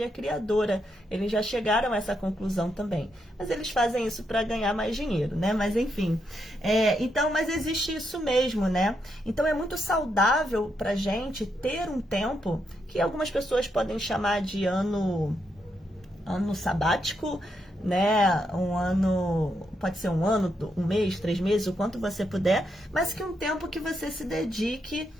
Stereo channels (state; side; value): normal; both; correlation 0.80